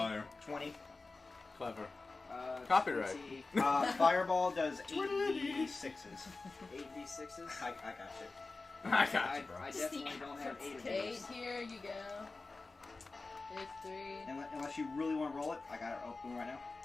20. Clever. Copyright. Fireball does 8d6s. 8d6s? I got you. I got you, bro. I definitely don't have 8 of 8 those. here, you go. It's 3. Unless you really want to roll it, I got it open right now.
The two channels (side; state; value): right; quieter; 3.6 dB